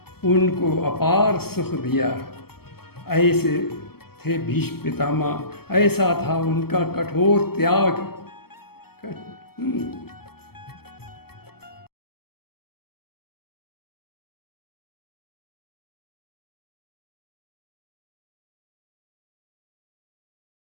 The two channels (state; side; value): late; right; 0.95 ms